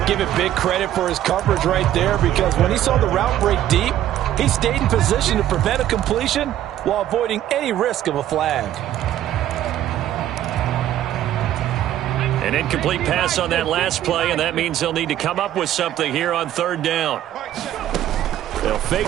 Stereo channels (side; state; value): left; quieter; 12.3 dB